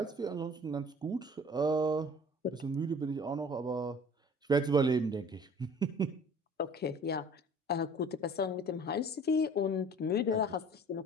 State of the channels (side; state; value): both; normal; correlation 0.48